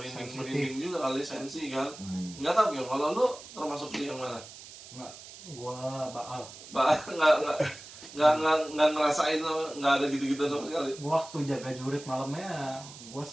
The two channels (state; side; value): noise; right; hiss, 16 dB below the sound